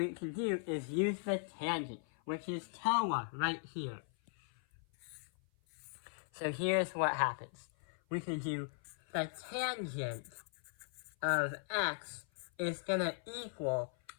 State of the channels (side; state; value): right; silent; 52 dB below the other